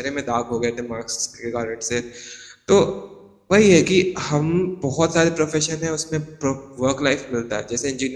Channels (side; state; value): both; identical; correlation 1.00